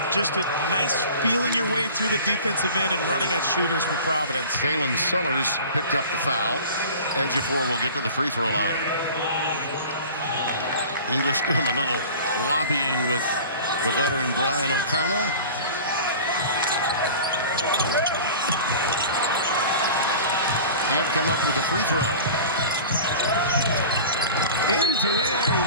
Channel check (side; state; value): both; inverted; correlation -0.39